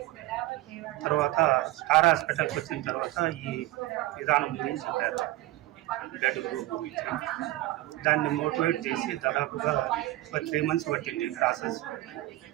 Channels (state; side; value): quieter; left; 17.1 dB